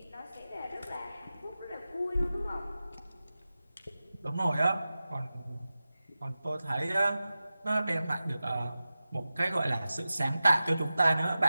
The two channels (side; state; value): both; inverted; correlation -0.95